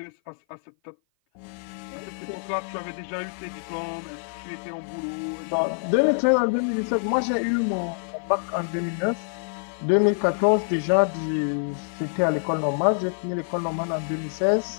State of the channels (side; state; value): right; silent; 56 dB below the other